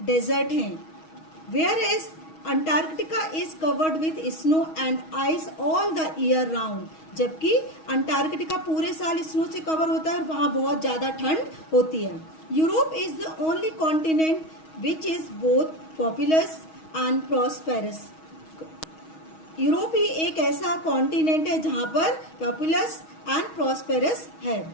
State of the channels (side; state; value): right; late; 6.3 ms